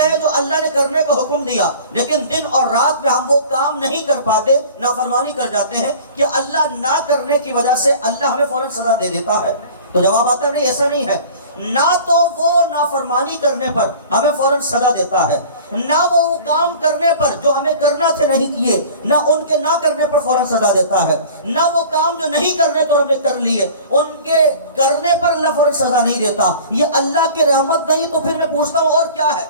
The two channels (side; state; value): both; inverted; correlation -0.43